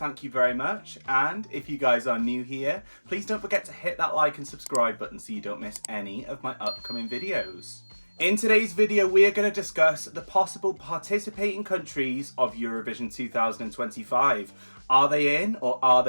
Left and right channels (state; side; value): inverted; both; correlation -1.00